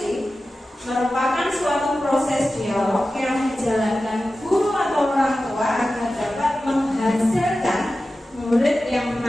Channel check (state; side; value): normal; both; correlation 0.94